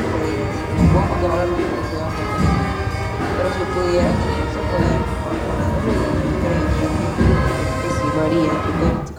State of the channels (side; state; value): both; identical; correlation 1.00